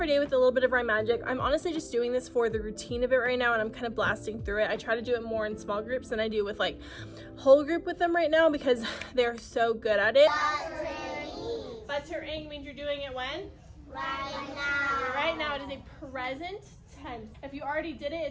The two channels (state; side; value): identical; both; correlation 1.00